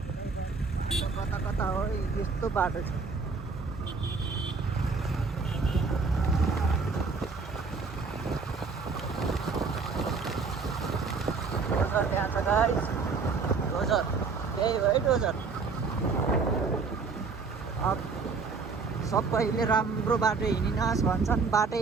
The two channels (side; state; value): left; quieter; 4.7 dB